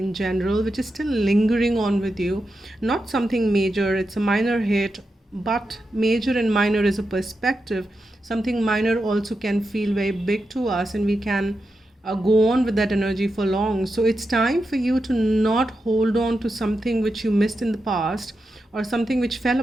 general, which is still lingering on with you. Not something major, it's a minor hit, but major and minor is a perspective. Something minor also can feel very big to us, and we can go on with that energy for long. So it's time for you to not hold on to something which you missed in the past, or something which fell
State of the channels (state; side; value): normal; both; correlation 0.88